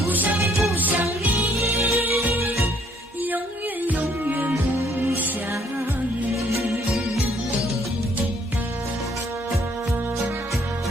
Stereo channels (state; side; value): normal; both; correlation 0.64